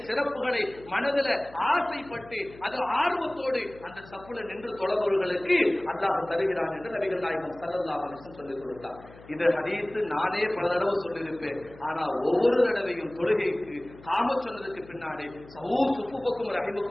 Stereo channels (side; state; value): left; noise; hum, 21 dB below the sound